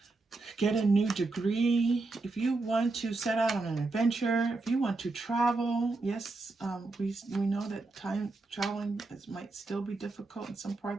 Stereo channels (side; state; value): left; quieter; 3.4 dB